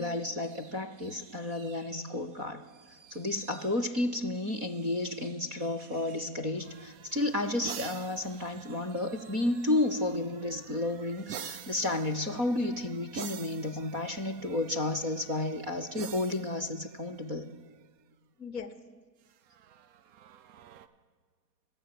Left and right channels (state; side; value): late; left; 4.1 ms